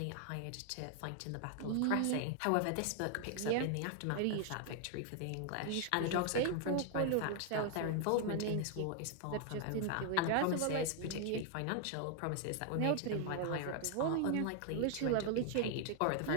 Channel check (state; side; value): different; both; correlation 0.00